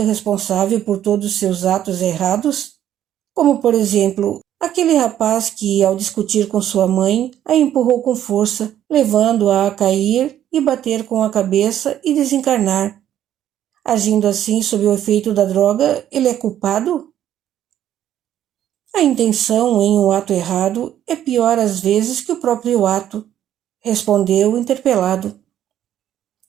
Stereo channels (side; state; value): left; quieter; 11.1 dB